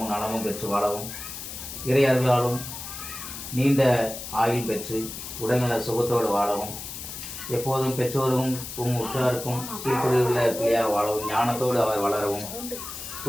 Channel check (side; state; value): left; noise; hiss, 9 dB below the sound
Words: நலமும் பெற்று வாழவும், இறை அருளாலும் நீண்ட ஆயுள் பெற்று உடல்நல சுகத்தோடு வாழவும், எப்போதும் பெற்றோரும் உற்றாருக்கும் கீழ்ப்படியுள்ள பிள்ளையாக வாழவும், ஞானத்தோடு அவர் வளரவும்,